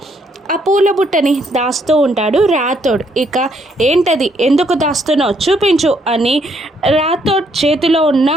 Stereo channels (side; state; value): both; normal; correlation 0.71